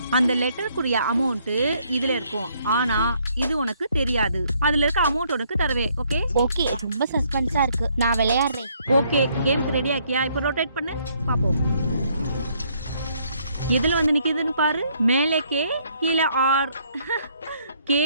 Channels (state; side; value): inverted; both; correlation -0.68